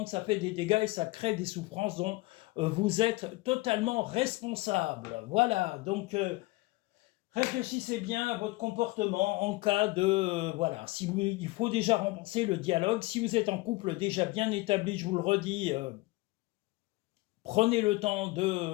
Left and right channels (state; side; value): quieter; right; 21.8 dB